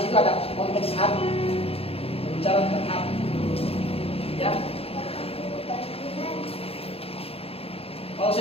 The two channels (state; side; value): late; right; 0.28 ms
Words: situ ada konteks hati, berbicara tentang hati, ya. Kalau